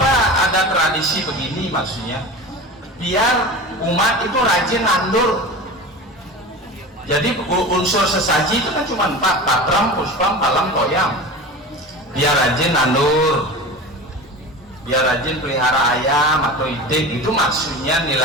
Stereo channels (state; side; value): normal; both; correlation 0.32